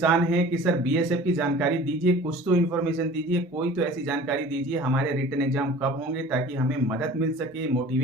हैं कि सर बीएसएफ की जानकारी दीजिए, कुछ तो इन्फॉर्मेशन दीजिए, कोई तो ऐसी जानकारी दीजिए हमारे रिटन एग्जाम कब होंगे, ताकि हमें मदद मिल सके,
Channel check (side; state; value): both; normal; correlation 0.44